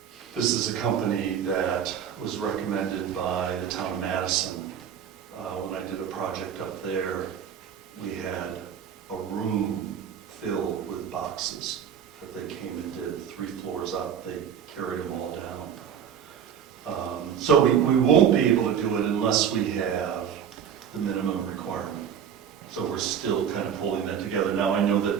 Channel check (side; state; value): left; quieter; 8.3 dB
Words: This is a company that was recommended by the town of Madison. When I did a project up there, we had a room filled with boxes that they came and did 3 floors up. They carried them all down. So we won't be able to do it unless we have the minimum requirement. So we're still kind of pulling that together. Now I know